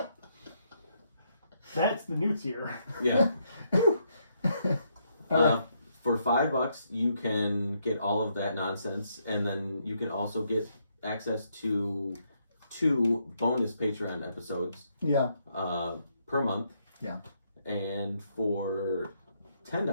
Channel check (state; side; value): inverted; both; correlation -0.75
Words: That's the new tier. Yeah. For $5, you can get all of that nonsense, and then you can also get access to 2 bonus Patreon episodes. Yeah. Per month. Yeah. And for